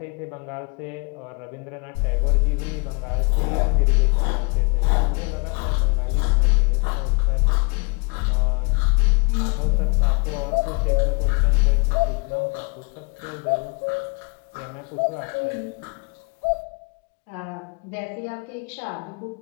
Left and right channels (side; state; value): right; quieter; 31.5 dB